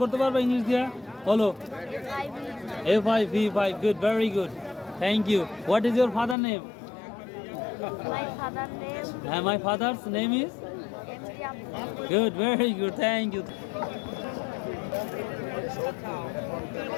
করতে পারবে ইংলিশ দিয়া? বলো। A5 V5, good, very good, thank you. What is your father name? My father's name is good, very good, thank you.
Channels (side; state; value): right; drops out; at 6.4 s